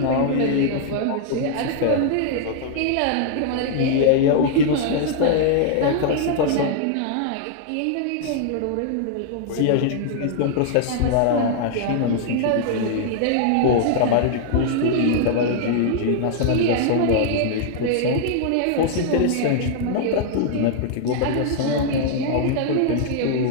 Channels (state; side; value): different; both; correlation -0.01